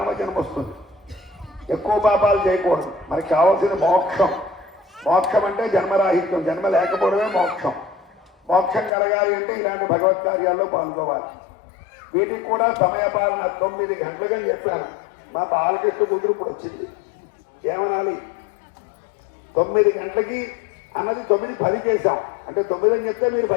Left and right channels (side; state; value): right; drops out; at 8.9 s